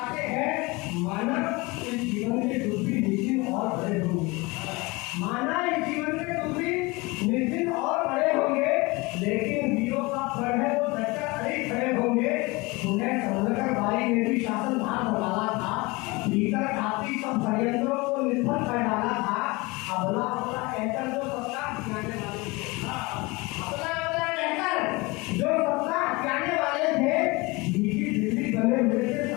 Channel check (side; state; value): right; quieter; 24.5 dB